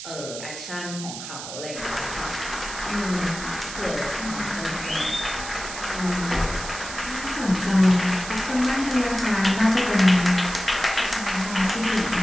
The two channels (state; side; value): noise; right; hiss, 9 dB below the sound